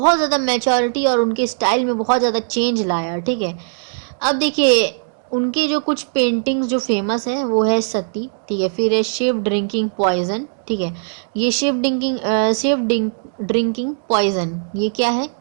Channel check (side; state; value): left; silent; digital silence